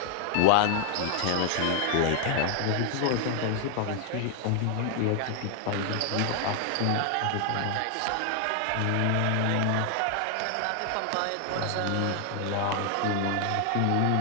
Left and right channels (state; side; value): different; both; correlation 0.00